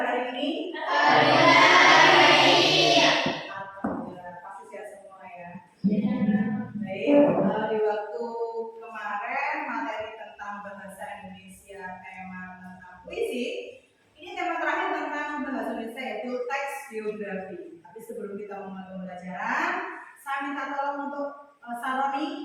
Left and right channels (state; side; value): identical; both; correlation 1.00